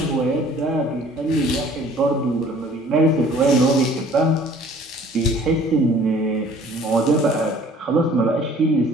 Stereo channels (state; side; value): normal; both; correlation 0.53